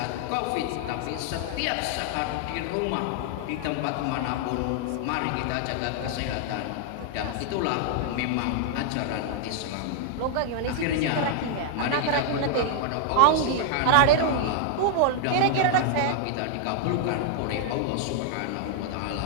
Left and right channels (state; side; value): different; both; correlation 0.00